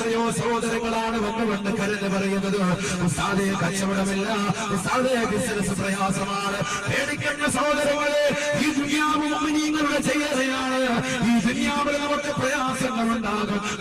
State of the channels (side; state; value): both; identical; correlation 1.00